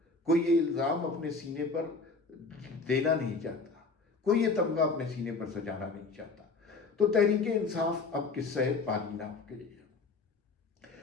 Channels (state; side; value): quieter; right; 4.0 dB